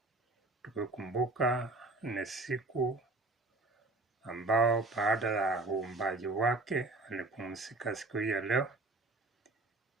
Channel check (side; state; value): left; quieter; 3.0 dB